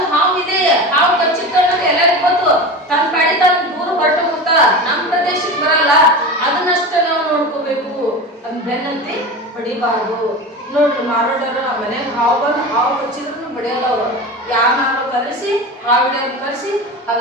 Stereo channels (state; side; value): normal; both; correlation 0.28